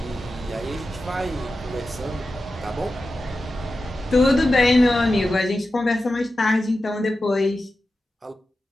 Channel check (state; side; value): normal; both; correlation 0.92